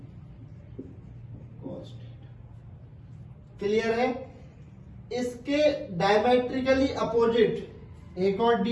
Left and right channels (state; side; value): identical; both; correlation 1.00